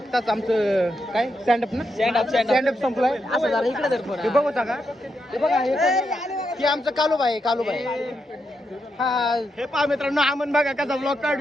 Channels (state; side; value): normal; both; correlation 0.83